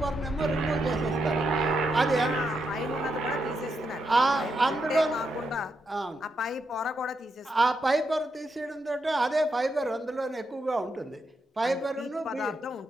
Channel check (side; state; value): both; normal; correlation 0.82